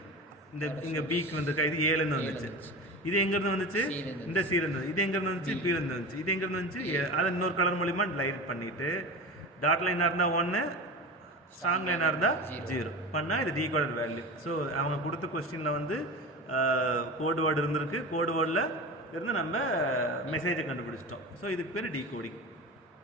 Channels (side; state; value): both; normal; correlation 0.29